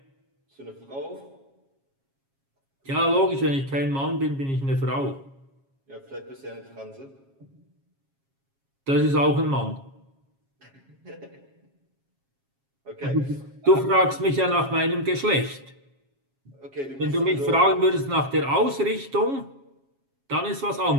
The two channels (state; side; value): late; left; 7.3 ms